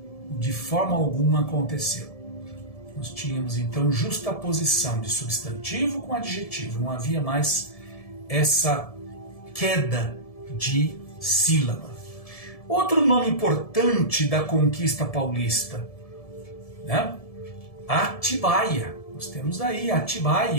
de forma alguma aconteceu. Nós tínhamos, então, justaposição de substantivo com adjetivo, não havia mais essa queda de sílaba. Outro nome importante da conquista paulista, né? Atibaia. Nós temos aí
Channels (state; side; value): late; right; 1.7 ms